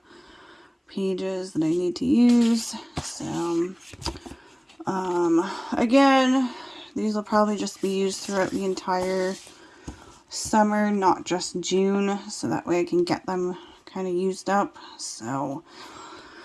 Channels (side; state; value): both; identical; correlation 1.00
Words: pages that I need to use. So again, these will probably just be used throughout the entire summer, not just June, so that way I can get them kind of used up. So